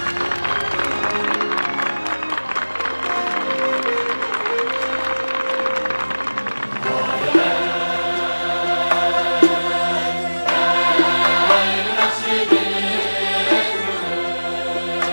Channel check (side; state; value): both; inverted; correlation -1.00